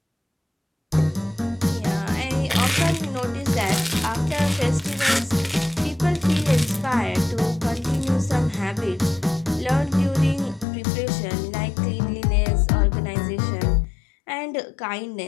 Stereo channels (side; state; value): right; drops out; at 10.7 s